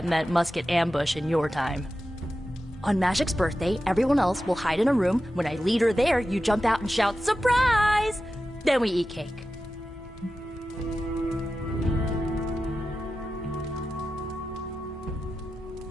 meant musket ambush in your time. On Magic's birthday, everyone else will hide in a room. When I lead her there, you jump out and shout, "Surprise!" Then we eat cake.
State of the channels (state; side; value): normal; both; correlation 0.92